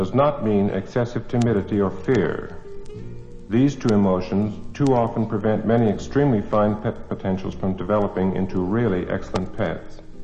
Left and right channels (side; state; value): both; identical; correlation 1.00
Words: not mean excessive timidity or fear. These two emotions too often prevent many extremely fine pet potentials from developing into really excellent pets.